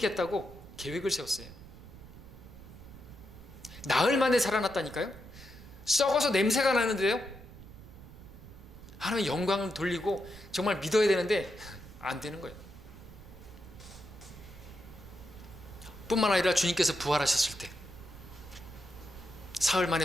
계획을 세웠어요. 나흘 만에 살아났다니까요. 썩어서 냄새가 나는데요. 하나님 영광을 돌리고 정말 믿어야 되는데 안 되는 거예요. 뿐만 아니라 주님께서 부활하셨을 때 사흘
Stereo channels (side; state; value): right; noise; rumble, 17 dB below the sound